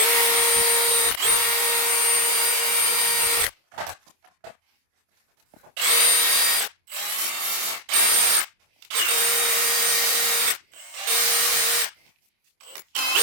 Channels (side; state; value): left; late; 26 ms